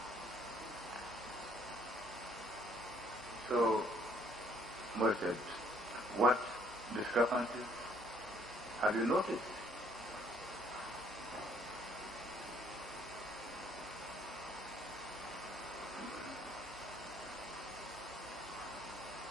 So, we said, what discrepancies? Have you noticed?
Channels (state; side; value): normal; both; correlation 0.63